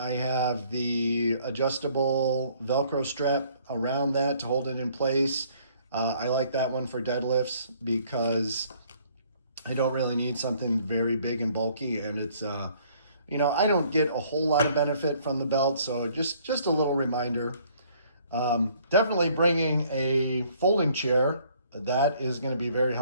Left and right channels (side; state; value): both; inverted; correlation -0.61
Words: have the adjustable Velcro strap around that to hold it in place. I like that one for deadlifts because I don't really need something very big and bulky, and it's I don't get a whole lot of benefit from the belt, so just a little reminder. Definitely bringing a folding chair. That is going to be very